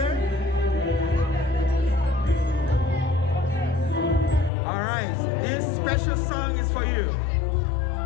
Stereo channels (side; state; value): right; drops out; at 4.5 s